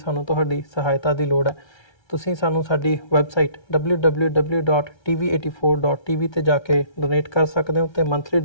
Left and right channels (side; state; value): right; late; 1.3 ms